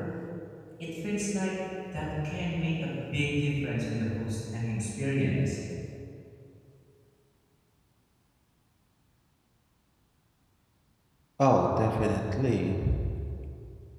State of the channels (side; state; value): both; identical; correlation 1.00